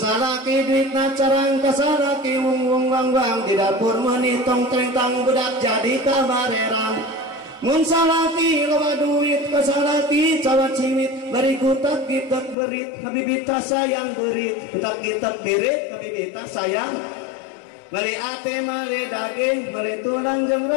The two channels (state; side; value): drops out; right; at 12.6 s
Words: duitna carang kasalaki wung wang di dapur menitong trengtang budak jadi kabarerang mun salaki loba duit kasalaki cawat cimit bari kutak gitak berit habibita sayang berit kutak gitak berit habibita sayang mali ate mali daging mali tulang jeung